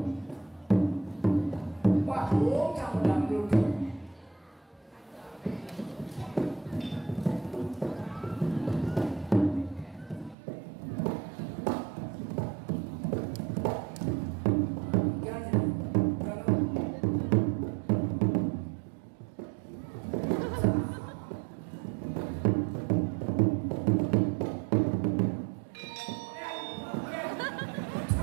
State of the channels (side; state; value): left; drops out; at 10.4 s